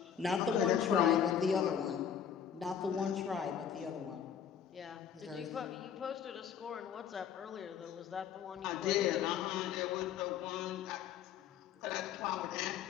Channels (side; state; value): right; quieter; 8.4 dB